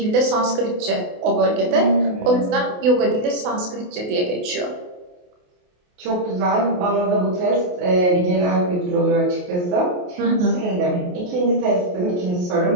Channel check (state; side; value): late; left; 28 ms